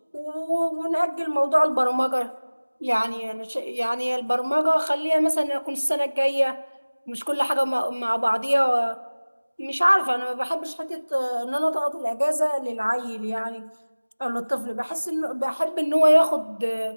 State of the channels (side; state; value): both; inverted; correlation -1.00